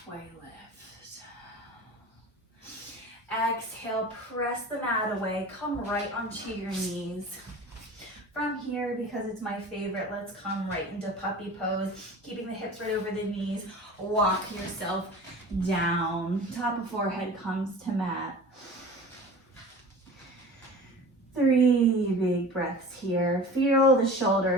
lift. Exhale, press the mat away, come right onto your knees. From here, because it's my favorite, let's come right into puppy pose, keeping the hips right over the knees. Walk yourself down. Top of forehead comes to mat. 3 big breaths here. Feel the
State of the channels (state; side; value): normal; both; correlation 0.38